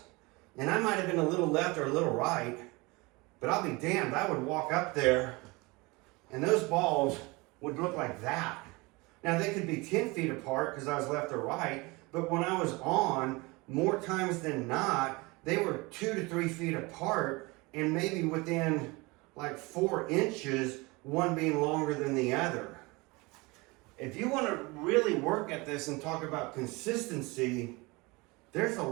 and I might have been a little left or a little right, but I'll be damned, I would walk up there, and those balls would look like that. Now they could be 10 feet apart because I was left or right, but when I was on, more times than not, they were 2 to 3 feet apart, and maybe within like 4 inches, one being longer than the other. If you want to really work at this and talk about consistency, there's a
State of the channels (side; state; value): left; quieter; 24.9 dB